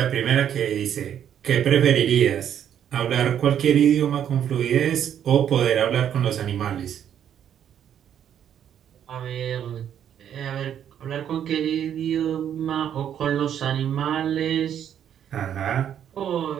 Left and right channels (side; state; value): left; quieter; 9.5 dB